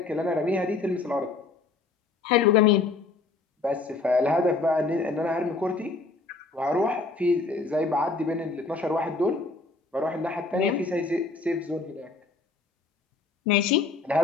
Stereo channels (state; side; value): quieter; right; 3.8 dB